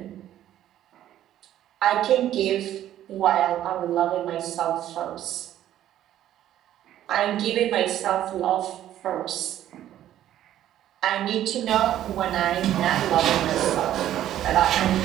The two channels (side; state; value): left; quieter; 12.1 dB